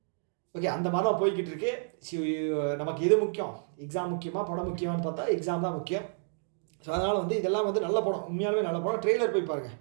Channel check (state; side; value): silent; left; digital silence